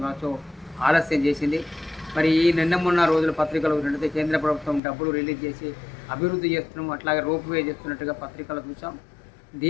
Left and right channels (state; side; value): drops out; right; at 4.8 s